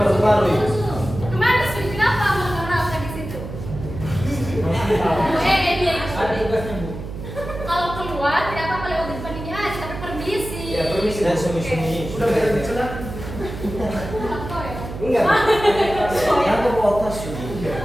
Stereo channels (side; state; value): right; noise; hum, 9 dB below the sound